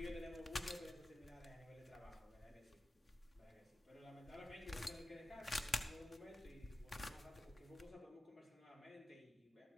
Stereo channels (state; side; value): normal; both; correlation 0.93